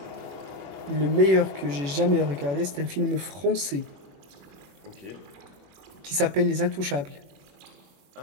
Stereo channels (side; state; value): left; late; 21 ms